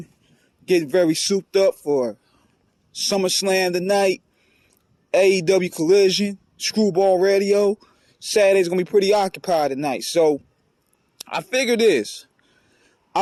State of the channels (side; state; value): both; identical; correlation 1.00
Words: getting very souped up for SummerSlam tonight, AEW Collision, Screwball Radio. Saturday's gonna be pretty occupied tonight, so I figured this.